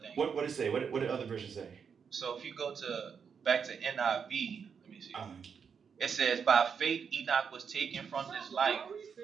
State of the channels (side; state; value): left; quieter; 6.5 dB